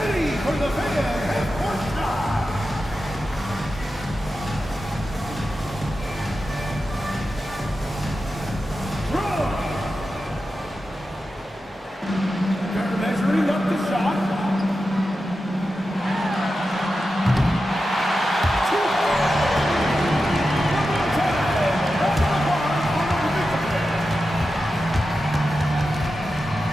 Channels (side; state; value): both; normal; correlation 0.91